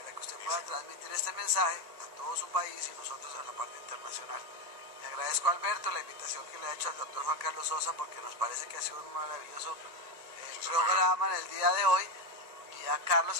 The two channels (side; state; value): left; late; 1.9 ms